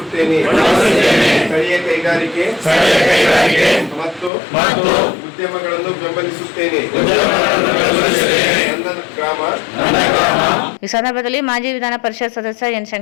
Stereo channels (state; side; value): drops out; right; at 4.3 s